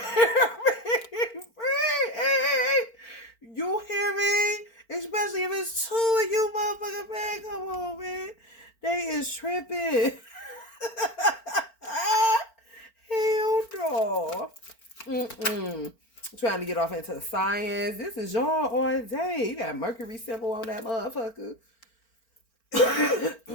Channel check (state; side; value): late; right; 4.4 ms